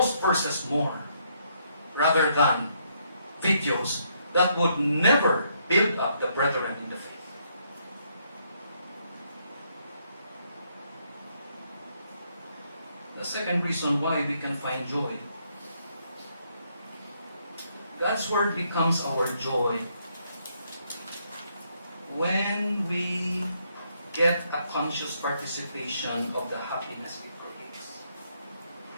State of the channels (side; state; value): both; inverted; correlation -0.73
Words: verses more rather than videos that would never build up the brethren in the faith? The second reason why we can find joy. God's Word becomes our joy when we get a conscious participation of the happiness it creates.